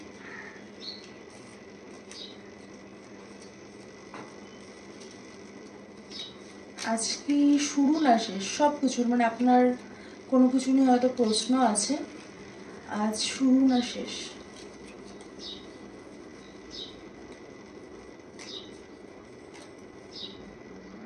আজকে শুরু না শেষ সব কিছুর, মানে আপনার কোনো কিছু নিয়ে হয়তো প্রশ্ন আছে, আজ শুরু না শেষ।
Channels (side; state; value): both; identical; correlation 1.00